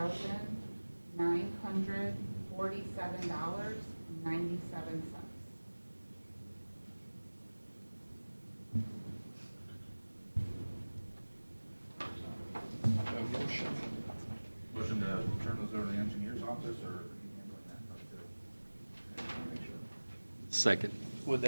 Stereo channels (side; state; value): both; inverted; correlation -1.00